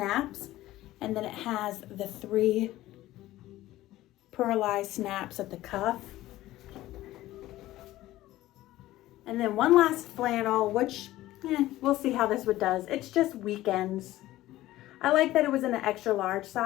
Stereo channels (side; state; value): right; quieter; 15.8 dB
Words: And then it has the 3 pearlized snaps at the cuff. And then one last flannel, which we'll see how this one does. It's just weekends. I like that it was in an extra large